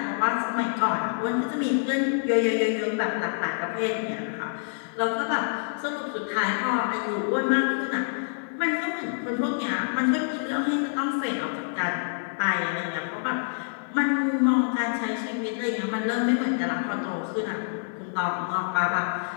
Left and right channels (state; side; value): silent; right; 56 dB below the other